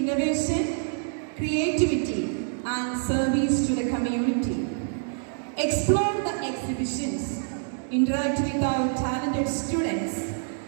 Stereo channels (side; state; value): left; silent; 61 dB below the other